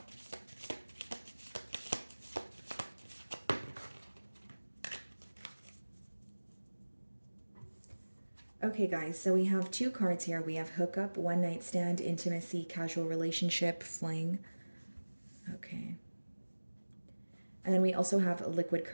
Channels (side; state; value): both; inverted; correlation -1.00